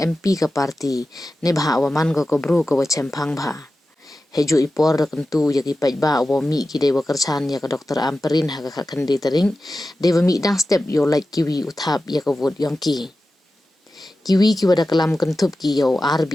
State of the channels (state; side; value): normal; both; correlation 0.94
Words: ka parti ne bha waman ka bru ka wa chempang bha heju ipor kentu ya ki pajba wa mi ki de wa kerchan ya ka Dr. Amperin ha ka khandi tering de wa mi dang step yo like kiwi uthap ya ka vot yong ki kiwi ki wada kalam kentup ki yo